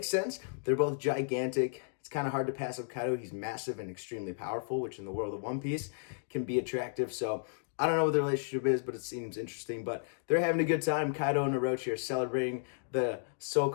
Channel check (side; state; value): right; silent; digital silence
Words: sense. They're both gigantic. It's kind of hard to pass up Kaido. He's massive and extremely powerful, which in the world of One Piece can be attractive. So I don't know what the relationship is, but it seems interesting. But they're having a good time. Kaido and Orochi are celebrating the